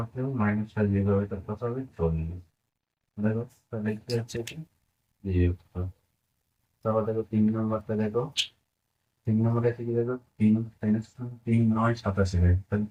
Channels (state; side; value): identical; both; correlation 1.00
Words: কেউ -6 যেভাবে তার কথা হবে 40। দেখো তাহলে কি হচ্ছে কি, বিয়োগ করো। তারপর দেখো 3 নম্বরটা দেখো, 3 নম্বরে আছে কি দেখো, 3 3 9 87, তাহলে